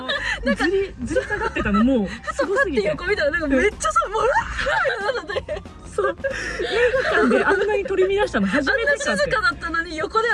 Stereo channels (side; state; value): both; identical; correlation 1.00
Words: ずり下がってたのもうすごすぎて。横見たらなんかめっちゃさ、もうそう。映画館であんなに取り乱したの初めてかって。静かだったのに横で